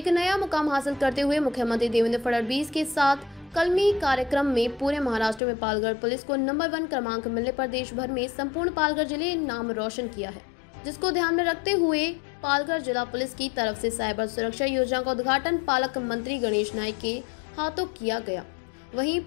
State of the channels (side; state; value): right; drops out; at 5.4 s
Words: नया मुकाम हासिल करते हुए मुख्यमंत्री देवेंद्र फडणवीस के साथ कलमी कार्यक्रम में पूरे महाराष्ट्र में पालघर पुलिस को नंबर 1 क्रमांक मिलने पर देश भर में संपूर्ण पालघर जिले नाम रोशन किया है, जिसको ध्यान में रखते हुए पालघर जिला पुलिस की तरफ से साइबर सुरक्षा योजना का उद्घाटन पालक मंत्री गणेश नायक के हाथों किया गया। वहीं